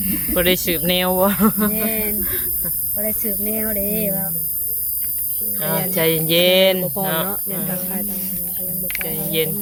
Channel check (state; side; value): identical; both; correlation 1.00